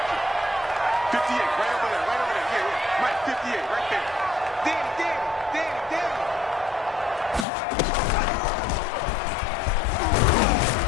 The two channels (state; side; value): drops out; right; at 7.5 s